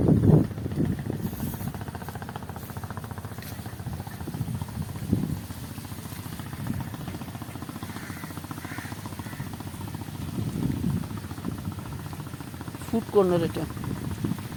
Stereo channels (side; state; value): both; identical; correlation 1.00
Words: ফুড কর্নার এটা।